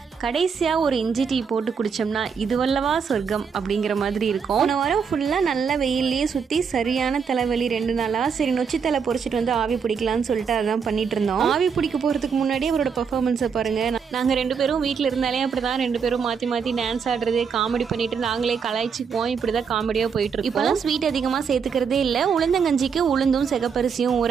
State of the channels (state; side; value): quieter; left; 6.3 dB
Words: கடைசியாக ஒரு இஞ்சி டீ போட்டு குடித்தோம்னா இதுவல்லவா சொர்க்கம் அப்படிங்கிற மாதிரி இருக்கும். போன வாரம் ஃபுல்லாக நல்ல வெயிலே சுற்றி சரியான தலைவலி 2 நாளாக. சரி நொச்சி தலை பொறிச்சிட்டு வந்து ஆவி பிடிக்கலான்னு சொல்லிட்டு அதான் பண்ணிட்டு இருந்தோம். ஆவி பிடிக்க போகிறதுக்கு முன்னாடி அவரோட பர்ஃபார்மன்ஸை பாருங்கள். நாங்கள் 2 பேரும் வீட்டில் இருந்தாலே அப்படி தான் 2 பேரும் மாற்றி மாற்றி டான்ஸ் ஆடுறது, காமெடி பண்ணிட்டு நாங்களே கலாய்ச்சிக்குவோம். இப்படி தான் காமெடியாக போயிட்டு இருக்கோம். இப்போலாம் ஸ்வீட் அதிகமாக சேர்த்துக்கிறதே இல்லை. உளுந்தங்கஞ்சிக்கு உளுந்தும் சிகப்பரிசியும்